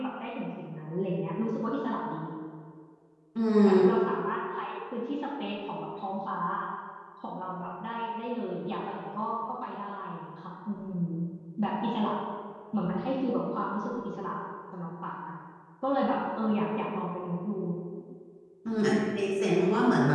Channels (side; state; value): both; identical; correlation 1.00